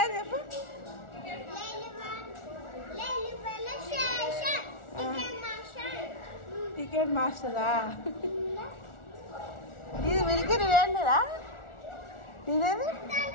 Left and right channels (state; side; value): late; right; 1.4 ms